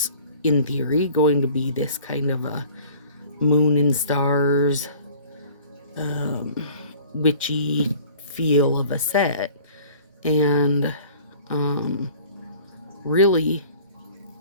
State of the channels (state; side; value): inverted; both; correlation -0.48